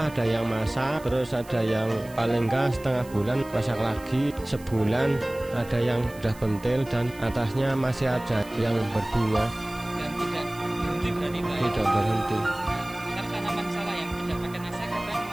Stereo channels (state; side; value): noise; right; hiss, 22 dB below the sound